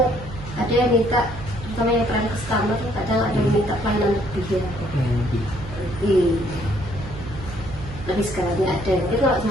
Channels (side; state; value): right; noise; hum, 12 dB below the sound